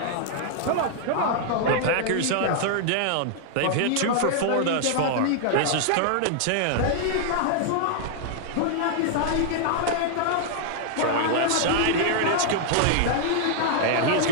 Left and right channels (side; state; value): both; different; correlation 0.00